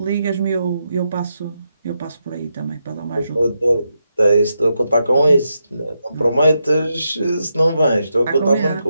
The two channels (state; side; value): inverted; both; correlation -0.84